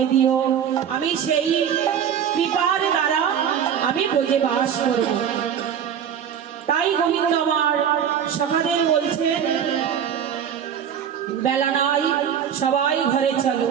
দিও, আমি সেই কৃপার দ্বারা আমি ব্রজে বাস করব। তাই গোবিন্দ আমার সখাদের বলছেন, বেলা নাই, সবাই ঘরে চলো।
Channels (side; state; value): left; quieter; 8.6 dB